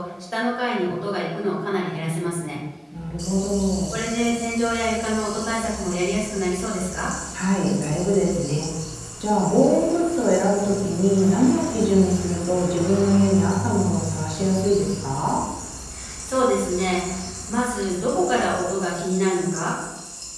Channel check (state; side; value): identical; both; correlation 1.00